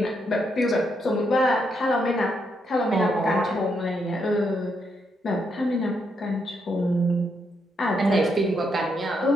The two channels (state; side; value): normal; both; correlation 0.78